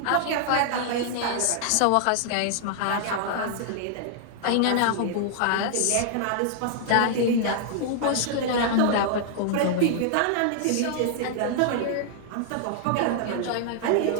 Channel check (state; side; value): different; both; correlation -0.01